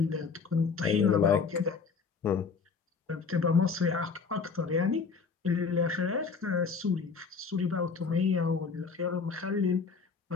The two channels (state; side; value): quieter; right; 5.3 dB